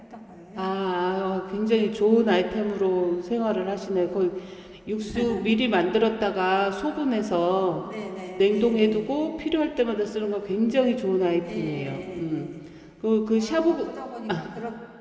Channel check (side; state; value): both; identical; correlation 1.00